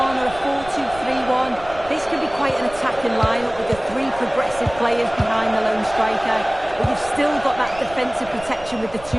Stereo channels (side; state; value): right; noise; rumble, 18 dB below the sound